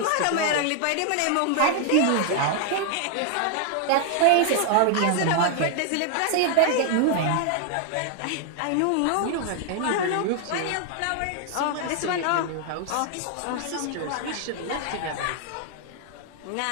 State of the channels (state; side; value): different; both; correlation 0.00